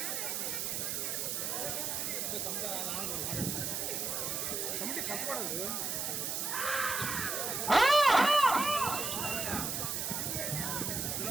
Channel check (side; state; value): right; noise; hiss, 1 dB below the sound